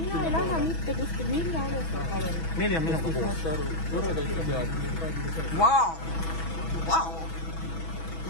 ei lähe mitte kuskil, mille alusel, palun? Meili on minuga koos. Vau! Ja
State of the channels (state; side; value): late; right; 6.1 ms